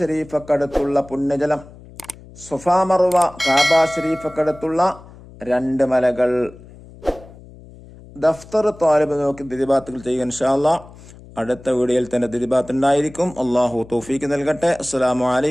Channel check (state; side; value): noise; left; hum, 20 dB below the sound